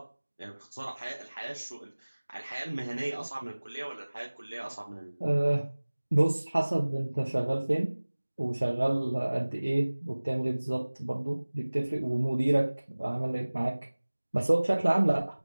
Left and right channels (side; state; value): both; inverted; correlation -1.00